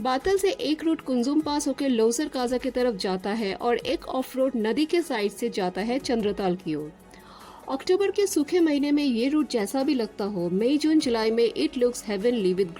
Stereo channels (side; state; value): both; identical; correlation 1.00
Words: बातल से एक root Kunzum पास होकर लोसर काजा की तरफ जाता है और एक of road नदी के साइड से जाता है चंद्रताल की ओर। अक्टूबर के सूखे महीने में ये रूट जैसा भी लगता हो, मई जून जुलाई में it looks heavenly with